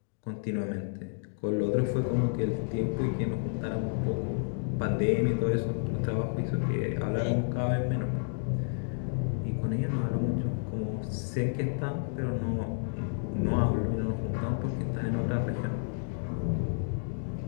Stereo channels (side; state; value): right; silent; digital silence